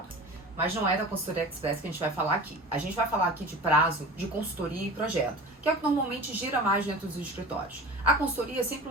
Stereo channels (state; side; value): normal; both; correlation 0.37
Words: Mas não é da consultoria express que a gente vai falar aqui. A gente vai falar aqui de prazo, de consultoria e projeto, que é o que normalmente gira mais dentro dos escritórios. A consultoria é sempre